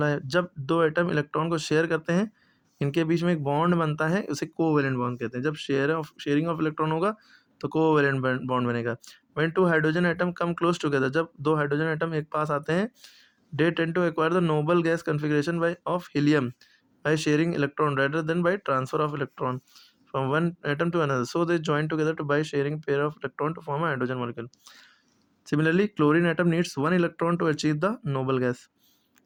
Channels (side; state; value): both; identical; correlation 1.00